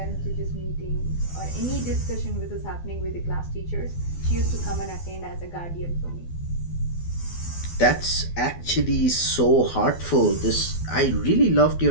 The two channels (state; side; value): late; right; 12 ms